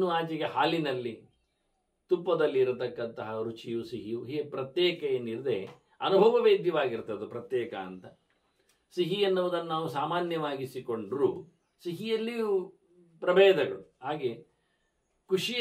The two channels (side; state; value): both; identical; correlation 1.00